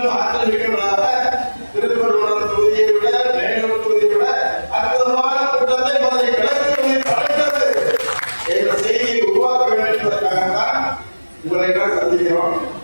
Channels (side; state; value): both; inverted; correlation -1.00